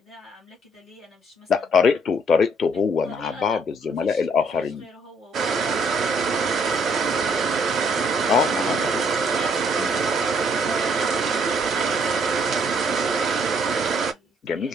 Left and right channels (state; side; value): normal; both; correlation 0.66